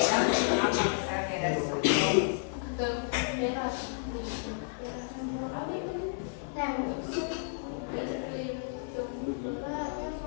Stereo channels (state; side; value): silent; right; digital silence